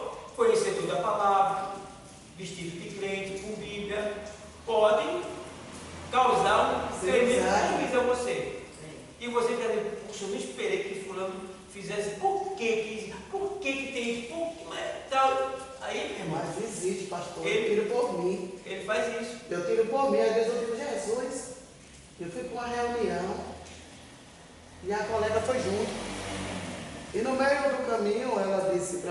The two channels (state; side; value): identical; both; correlation 1.00